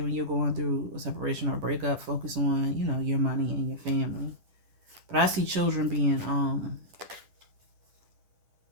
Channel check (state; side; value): late; left; 10 ms